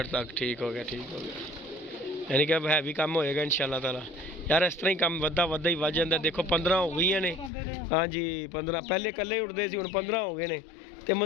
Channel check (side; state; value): right; drops out; at 7.5 s